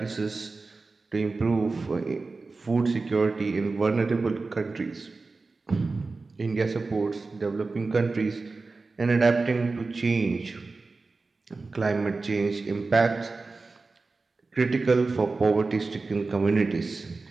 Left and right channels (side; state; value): left; quieter; 3.8 dB